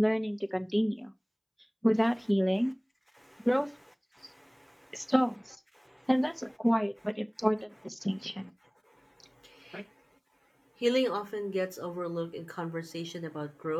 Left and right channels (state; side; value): identical; both; correlation 1.00